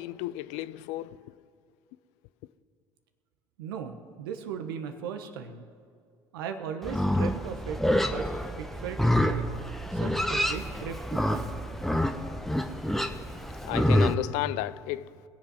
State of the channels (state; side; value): normal; both; correlation 0.79